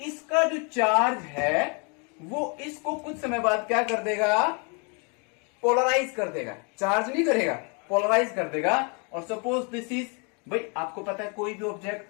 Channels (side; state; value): right; quieter; 35.1 dB